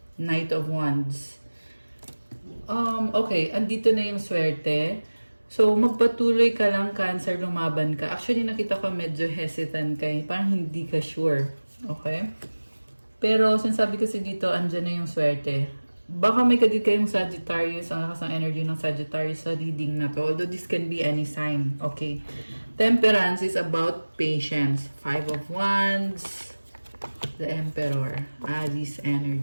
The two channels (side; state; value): both; inverted; correlation -1.00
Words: Knight of Wands. Okay. Andito na yung swerte. So, magpatuloy ka lang, Cancer, lumaban ka. Actually, nakita ko medyo hesitant ka. Parang hindi ka sure. Okay? Pero, sinasabi kasi dito, andyan na yung swerte. Baka may kadit kayong Sagittarius, ang lakas ng energy ng Sagittarius sa reading na to. Although, this can be any sign. Okay? Temperance is about patience. 5 of Wands. The Emperor. Aries